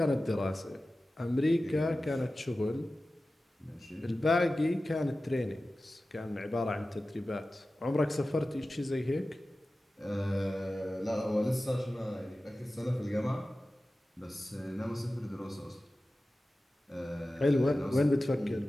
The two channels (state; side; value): normal; both; correlation 0.95